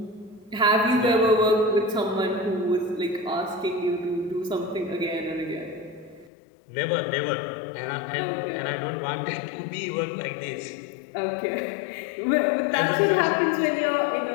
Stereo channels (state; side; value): drops out; right; at 6.3 s